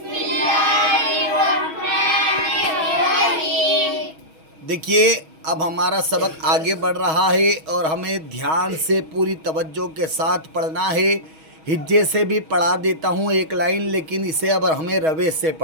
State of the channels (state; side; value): late; left; 6.3 ms